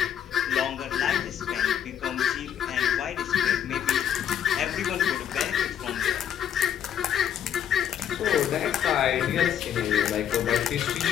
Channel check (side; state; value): right; quieter; 9.3 dB